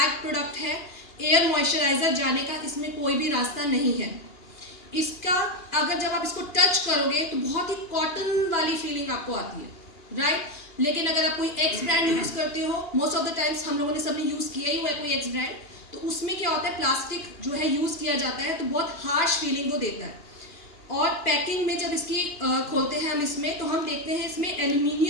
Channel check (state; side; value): late; right; 2.4 ms